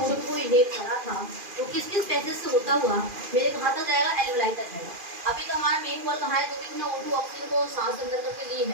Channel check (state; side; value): late; left; 2.4 ms